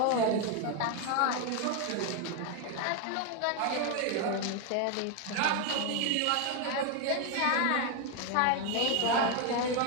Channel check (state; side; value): different; both; correlation 0.01